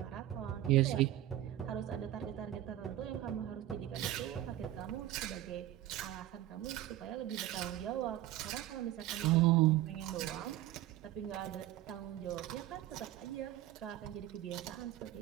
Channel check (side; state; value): left; quieter; 13.8 dB